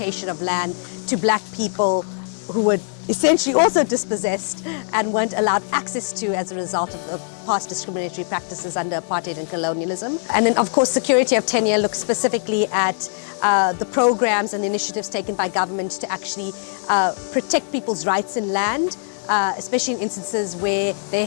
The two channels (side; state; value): right; silent; 65 dB below the other